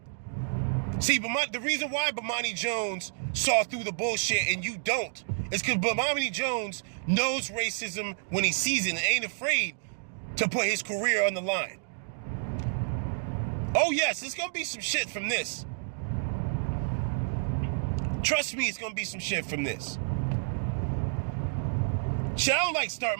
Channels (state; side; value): silent; left; digital silence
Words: See, the reason why Bomani Jones saw through the bullshit and you don't is because Bomani Jones knows racism when he sees it and ain't afraid to put his career on the line. Oh yes, there's gonna be some shit from this. Trust me, it's gonna be some shit from this. Shit, I don't like starting